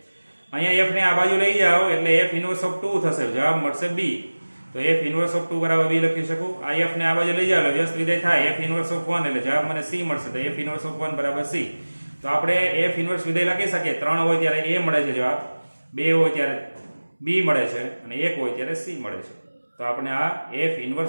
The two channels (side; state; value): both; inverted; correlation -1.00